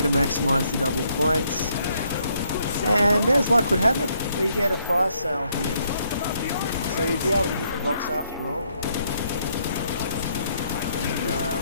to maximise the double points. And as luck would have it, we get a fire sale here. So we'll be able to hit the box after all. And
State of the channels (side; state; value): both; inverted; correlation -0.72